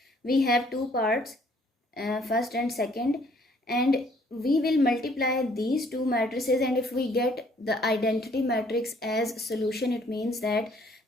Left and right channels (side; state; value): both; normal; correlation 0.62